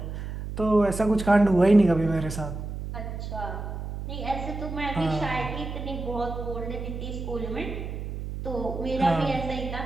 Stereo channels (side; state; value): right; noise; hum, 7 dB below the sound